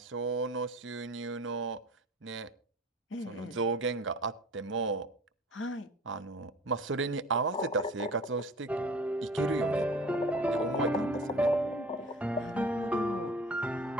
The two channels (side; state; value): both; normal; correlation 0.42